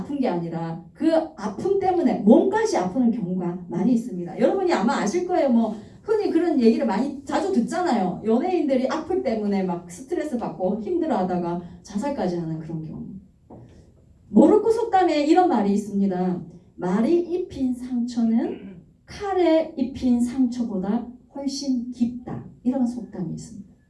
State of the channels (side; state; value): both; identical; correlation 1.00